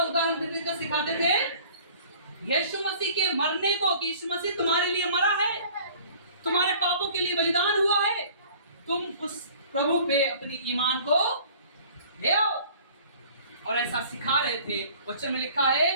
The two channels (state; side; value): inverted; both; correlation -0.50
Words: उदाहरण दे देकर सिखाते थे? यीशु मसीह के मरने को, कि यीशु मसीह तुम्हारे लिए मरा है, तुम्हारे पापों के लिए बलिदान हुआ है, तुम उस प्रभु पे अपनी ईमान को ले आओ। और ऐसा सिखा रहे थे। वचन में लिखा